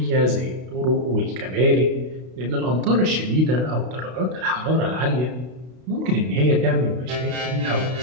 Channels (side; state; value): left; late; 32 ms